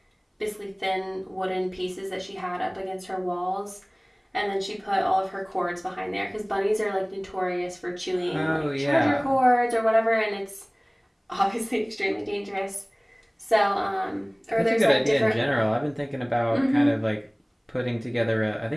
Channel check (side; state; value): both; identical; correlation 1.00